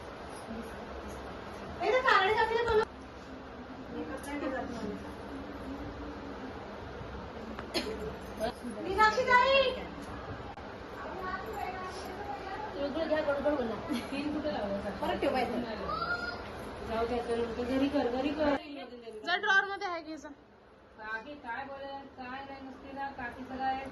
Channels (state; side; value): identical; both; correlation 1.00